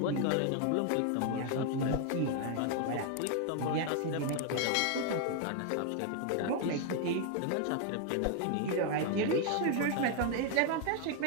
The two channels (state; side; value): different; both; correlation 0.00